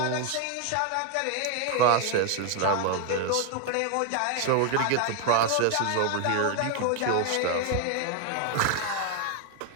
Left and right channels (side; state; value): both; different; correlation 0.01